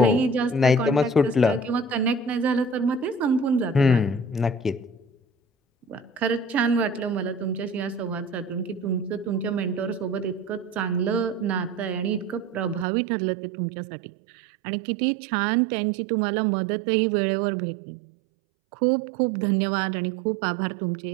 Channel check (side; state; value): left; drops out; at 12.9 s